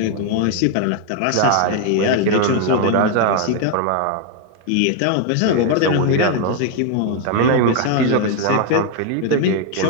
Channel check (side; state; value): both; different; correlation 0.01